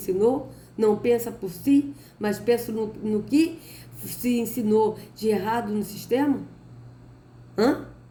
não pensa por si, mas pensa no que se ensinou de errado no sistema.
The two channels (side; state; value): both; identical; correlation 1.00